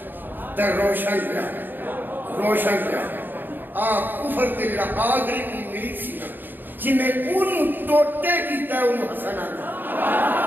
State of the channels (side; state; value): left; late; 0.092 ms